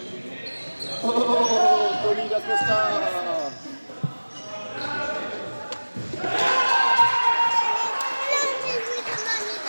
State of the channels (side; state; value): both; inverted; correlation -1.00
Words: Oh, Tony Da Costa!